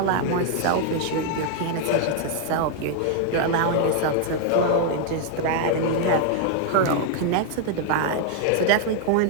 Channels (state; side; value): different; both; correlation 0.00